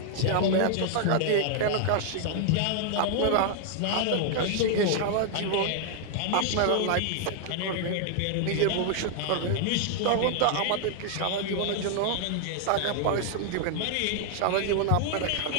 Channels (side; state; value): both; different; correlation 0.00